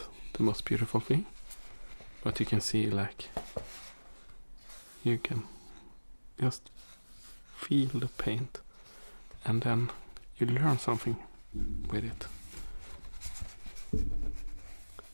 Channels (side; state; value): both; inverted; correlation -1.00